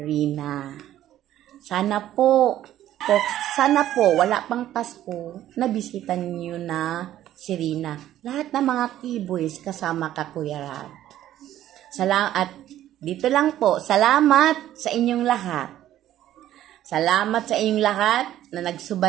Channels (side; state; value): left; quieter; 12.7 dB